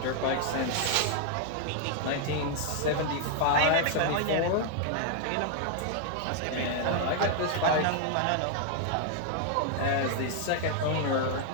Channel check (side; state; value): both; different; correlation 0.00